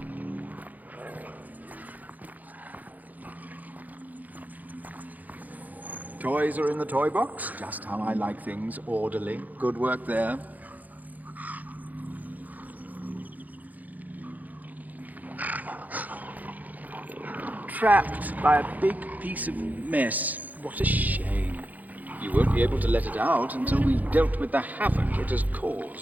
Toys are in the toy box, just how I like things, orderly. Good work there. Trapped by a big piece of mess. What a shame. You won't be able to let it out until we've dealt with the havoc it has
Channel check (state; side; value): late; left; 0.081 ms